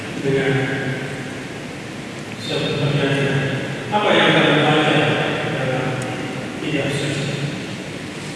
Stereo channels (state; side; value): identical; both; correlation 1.00